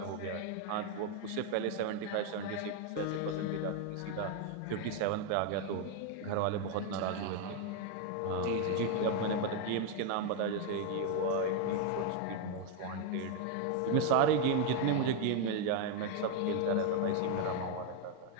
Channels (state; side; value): different; both; correlation 0.01